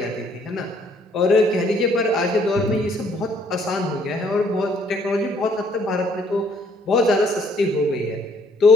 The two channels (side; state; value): both; normal; correlation 0.64